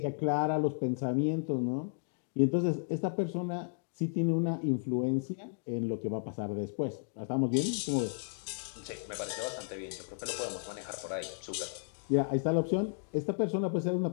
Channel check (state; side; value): silent; right; digital silence